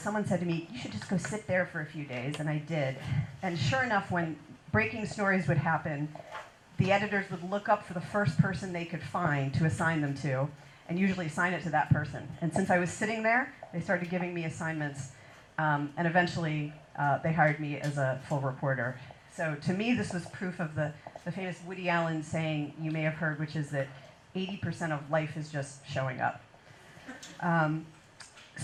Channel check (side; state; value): both; identical; correlation 1.00